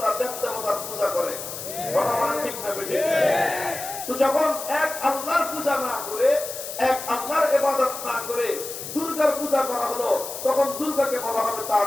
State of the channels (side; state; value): left; noise; hiss, 9 dB below the sound